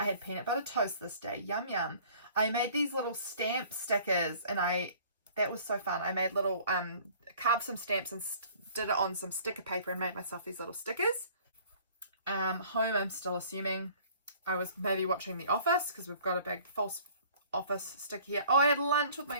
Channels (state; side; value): inverted; both; correlation -0.52